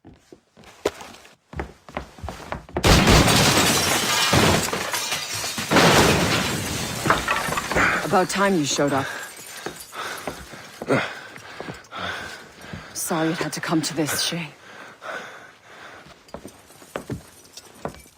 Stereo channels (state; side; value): identical; both; correlation 1.00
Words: About time you showed up. Sorry it had to come to this, Shay.